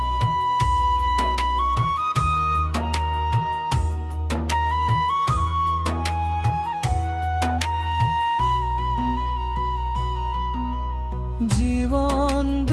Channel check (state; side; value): identical; both; correlation 1.00